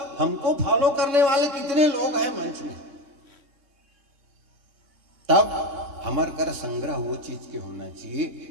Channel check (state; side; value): late; left; 3.6 ms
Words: हमको फॉलो करने वाले कितने लोग हैं मंच में। तब हमार कर संग्रह वो चीज के होना